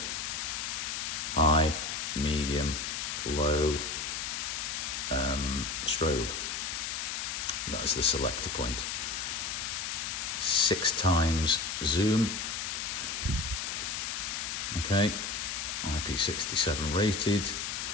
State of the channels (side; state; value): left; noise; hiss, 3 dB below the sound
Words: High, medium, low, strobe. That's the selector point. 6x zoom. Okay, IP67 rated.